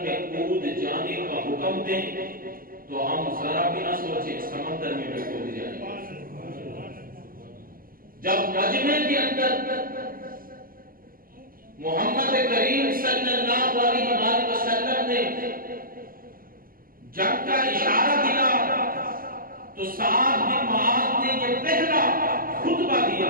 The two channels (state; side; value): late; left; 0.42 ms